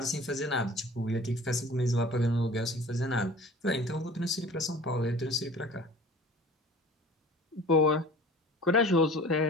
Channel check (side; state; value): both; normal; correlation 0.44